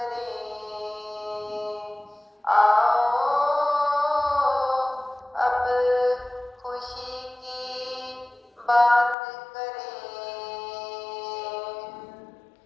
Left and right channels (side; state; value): right; drops out; at 9.2 s